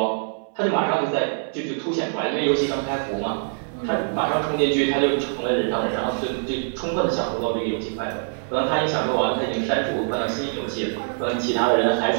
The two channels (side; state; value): left; silent; digital silence